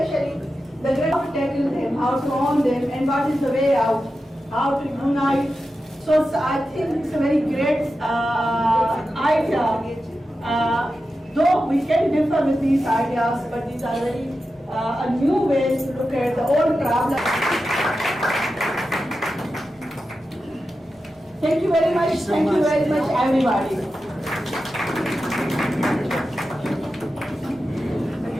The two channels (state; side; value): normal; both; correlation 0.91